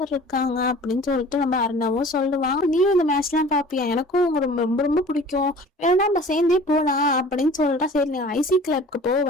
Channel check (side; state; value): both; normal; correlation 0.45